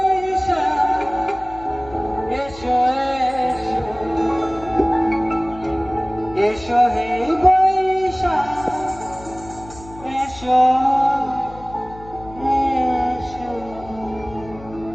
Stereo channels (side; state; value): left; noise; hum, 18 dB below the sound